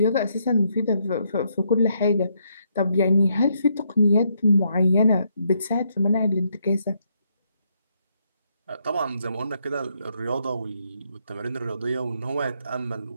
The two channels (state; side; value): inverted; both; correlation -0.75